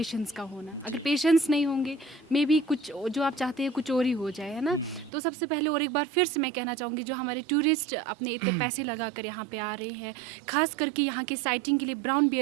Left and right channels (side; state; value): left; drops out; at 5.1 s